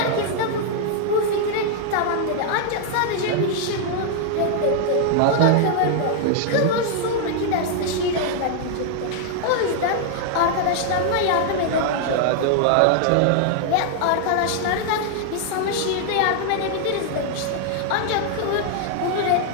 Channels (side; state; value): both; different; correlation 0.00